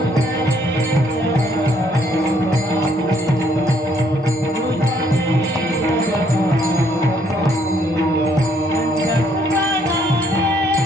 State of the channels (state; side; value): normal; both; correlation 0.67